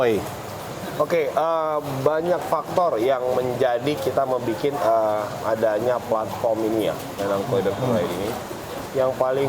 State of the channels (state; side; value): identical; both; correlation 1.00